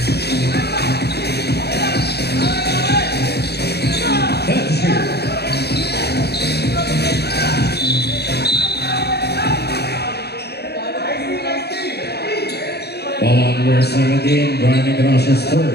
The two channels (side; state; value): right; late; 0.48 ms